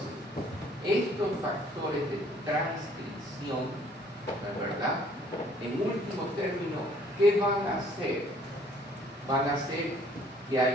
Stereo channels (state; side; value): normal; both; correlation 0.59